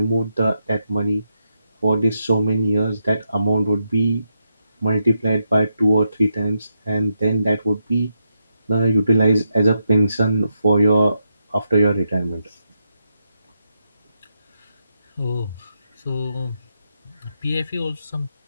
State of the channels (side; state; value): both; inverted; correlation -0.83